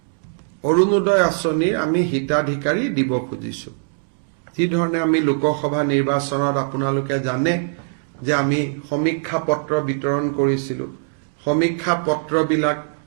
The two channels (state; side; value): silent; left; digital silence